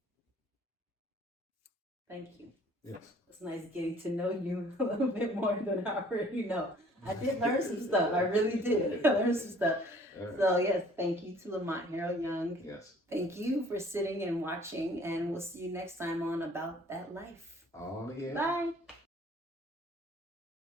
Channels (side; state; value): both; normal; correlation 0.55